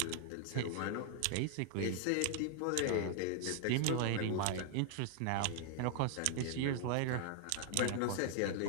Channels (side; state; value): both; different; correlation 0.00